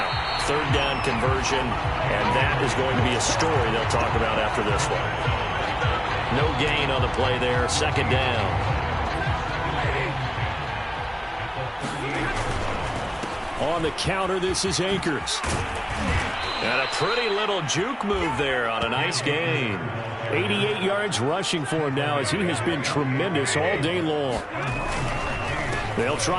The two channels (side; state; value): both; identical; correlation 1.00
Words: 3rd down conversion, and that is going to be a story they'll talk about after this one. No gain on the play there, 2nd down. On the counter, this is Akers. And a pretty little juke move there on a nice gain. 88 yards rushing for him now as he has been tremendous all day long. They'll